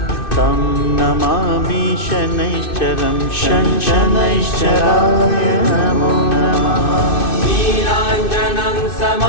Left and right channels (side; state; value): right; late; 2.6 ms